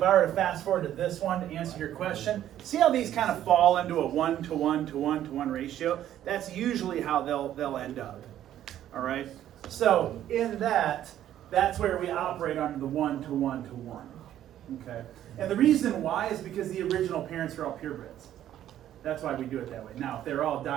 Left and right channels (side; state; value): left; quieter; 11.7 dB